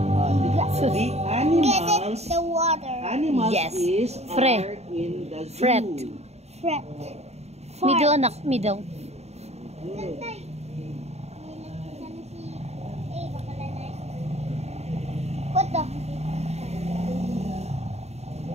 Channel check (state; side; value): late; left; 0.31 ms